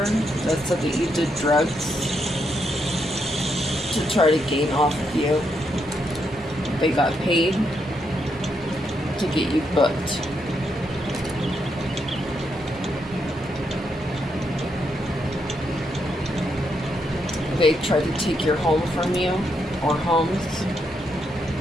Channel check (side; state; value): both; normal; correlation 0.80